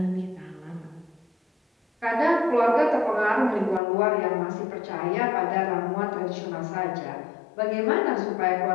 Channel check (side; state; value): right; drops out; at 3.8 s